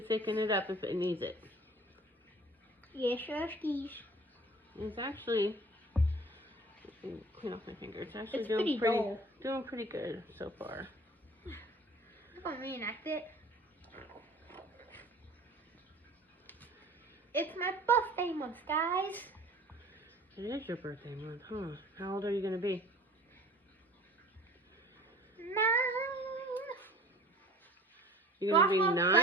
thicken it up if it needs it. Yes, sure, skis. It's actually, clean off my finger. It's actually It's doing pretty dull. doing pretty good so far. I'm going to reenact it. It's my birthday month, guys. It is your birthday month, huh? How old are you gonna be? 9. You're gonna be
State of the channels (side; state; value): both; normal; correlation 0.46